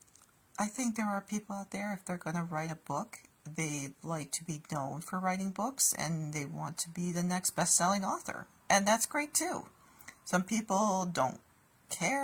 I think there are people out there, if they're going to write a book, they like to be known for writing books and they want to be the next best-selling author. And that's great too. Some people don't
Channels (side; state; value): both; identical; correlation 1.00